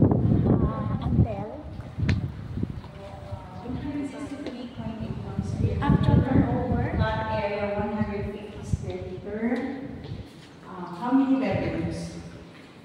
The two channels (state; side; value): identical; both; correlation 1.00